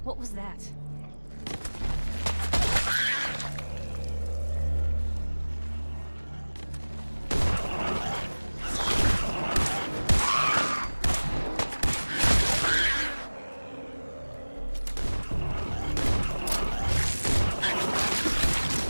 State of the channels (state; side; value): inverted; both; correlation -1.00